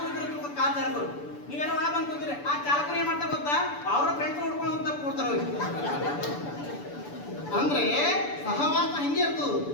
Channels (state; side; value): late; right; 6.9 ms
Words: ಇರ್ತಾರೆ, ಕಾರ್ ಚಾಲಕರು ನೀವೇನೋ ಒಳಗೆ ಬಂದು ಕೂತಿರಿ. ಆ ಚಾಲಕರು ಏನ್ ಮಾಡ್ತಾರೆ ಗೊತ್ತಾ, ಅವರ ಫ್ರೆಂಡ್ಸ್ ಹುಡ್ಕೊಂಡು ಹೋಗ್ತಾ ಕೊಡ್ತಾರ ಅವ್ರಿಗೆ. ಅಂದ್ರೆ ಸಹವಾಸ ಹಿಂಗೆ ಇರ್ತದ.